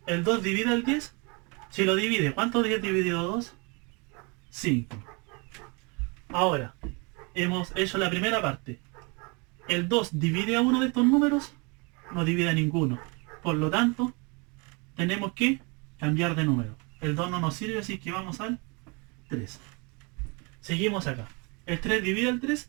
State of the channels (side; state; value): left; quieter; 30.6 dB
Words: ¿El 2 divide al 10? Si lo divide, ¿cuánto es 10 dividido 2? 5. Ahora, hemos hecho la primera parte. ¿El 2 divide a uno de estos números? No divide a ninguno. Por lo tanto, tenemos que cambiar de número. El 2 no nos sirve, así que vamos al 3. Seguimos acá. ¿El 3 divide al